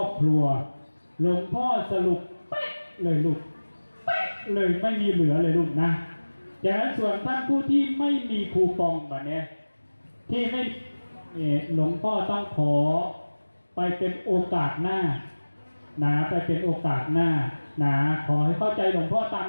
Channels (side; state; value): both; inverted; correlation -1.00